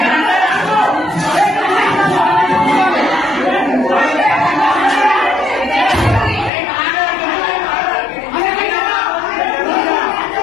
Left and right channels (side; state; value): right; drops out; at 6.5 s